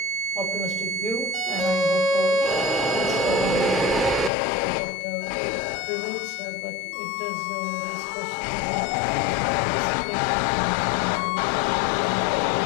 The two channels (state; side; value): drops out; right; at 4.3 s